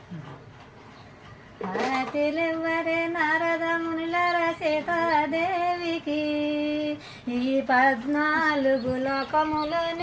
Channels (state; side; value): identical; both; correlation 1.00